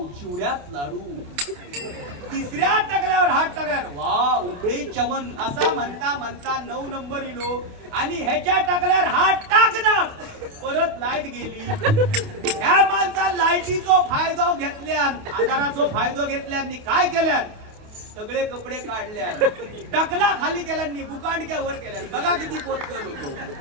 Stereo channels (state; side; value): late; left; 28 ms